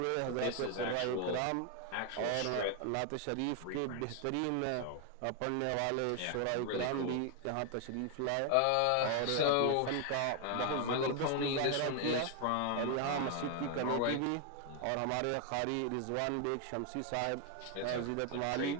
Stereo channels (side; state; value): both; different; correlation 0.00